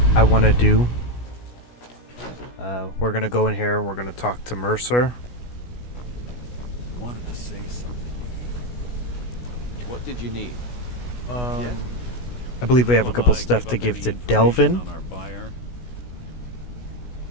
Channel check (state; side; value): late; right; 16 ms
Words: I want to do. We're going to go in here and we're going to talk to Mercer. Wanted to say something to you. What did you need? I believe we have a couple stuff to give to Delvin. On our buyer?